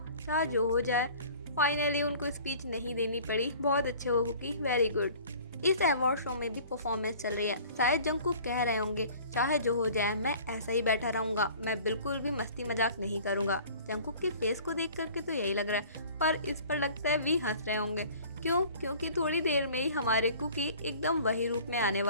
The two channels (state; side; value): inverted; both; correlation -0.47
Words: चाहे जो हो जाए। फाइनली उनको स्पीच नहीं देनी पड़ी, बहुत अच्छे हो कुकी, वेरी गुड। इस अवार्ड शो में भी परफॉर्मेंस चल रही है। शायद जंगकुक कह रहे होंगे चाहे जो हो जाए मैं ऐसा ही बैठा रहूंगा, मैं बिल्कुल भी मस्ती मजाक नहीं करूंगा। जंगकुक के फेस को देख करके तो यही लग रहा है, पर इस पर लगता है भी हंस रहे होंगे। क्यों? क्योंकि थोड़ी देर में ही हमारे कुकी एकदम वही रूप में आने